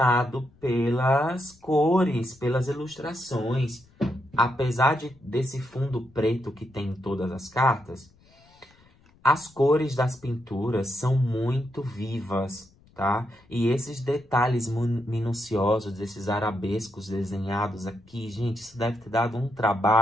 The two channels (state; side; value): noise; left; rumble, 30 dB below the sound